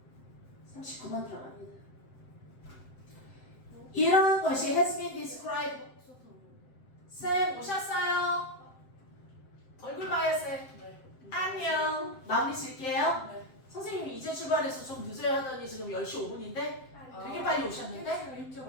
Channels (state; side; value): late; right; 7.7 ms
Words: 39번 들어갑니다. 이런 것이 has been described. 쌤 오셨어요? 얼굴 봐요 쌤. 안녕. 마무리 질게요. 선생님이 이제 출발해서 좀 늦어야 하더니 지금 10시 5분인데 되게 빨리 오셨는데? 일찍